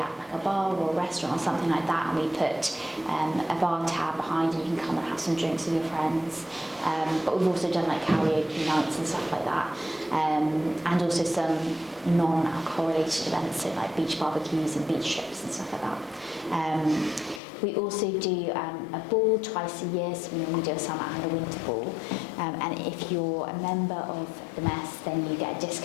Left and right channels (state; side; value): drops out; right; at 17.4 s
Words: like a bar or a restaurant or something like that, and we put a bar tab behind and you can come and have some drinks with your friends. But we've also done like karaoke nights and stuff like that, and also some non-alcohol related events, so like beach barbecues and beach trips and stuff like that. We also do a ball twice a year, so we normally do a summer and a winter ball, and if you're a member of the mess then you get a